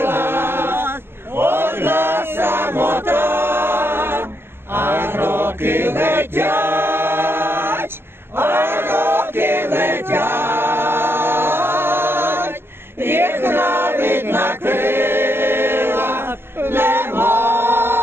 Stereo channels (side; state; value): left; late; 0.11 ms